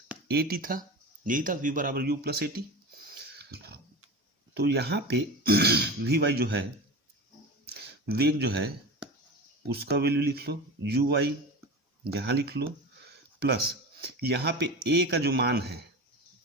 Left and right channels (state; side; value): normal; both; correlation 0.29